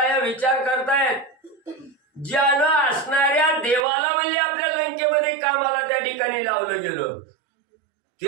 विचार करतायत ज्यानं असणाऱ्या देवाला म्हणले आपल्या लंकेमध्ये कामाला त्या ठिकाणी लावलं गेलं.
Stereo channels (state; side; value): drops out; left; at 3.9 s